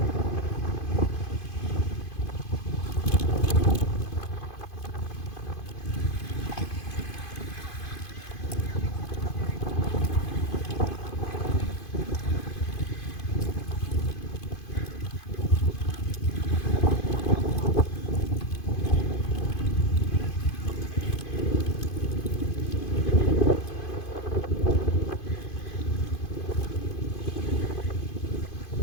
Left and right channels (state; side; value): late; right; 2.5 ms